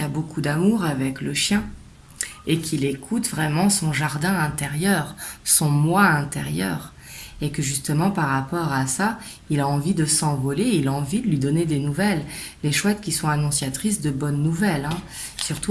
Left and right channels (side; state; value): both; identical; correlation 1.00